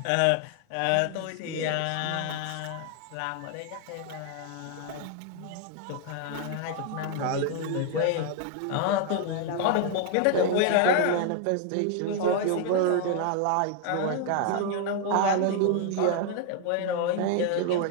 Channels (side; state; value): both; different; correlation 0.00